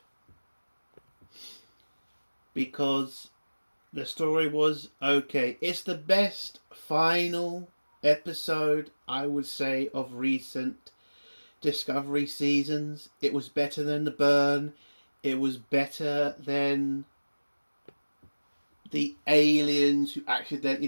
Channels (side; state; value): both; inverted; correlation -1.00